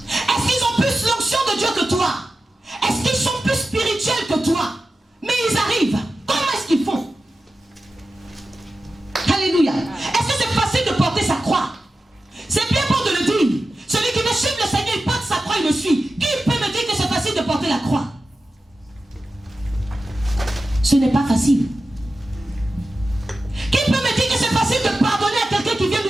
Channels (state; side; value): normal; both; correlation 0.93